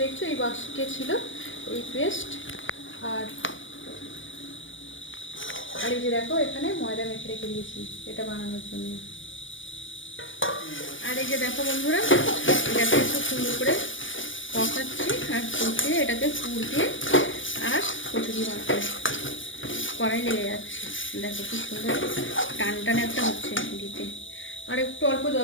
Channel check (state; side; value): late; right; 0.56 ms